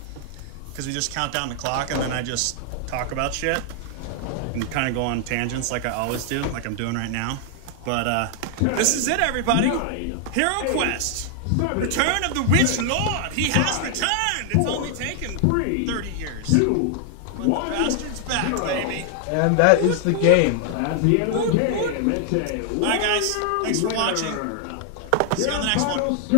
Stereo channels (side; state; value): both; different; correlation 0.00